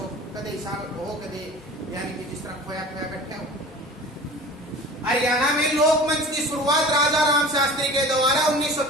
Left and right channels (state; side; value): normal; both; correlation 0.40